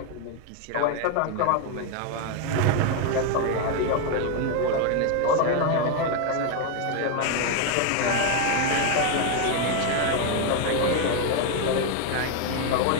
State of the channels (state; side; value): different; both; correlation 0.01